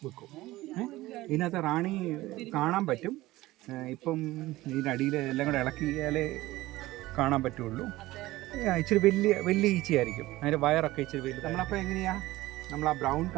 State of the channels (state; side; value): quieter; left; 17.8 dB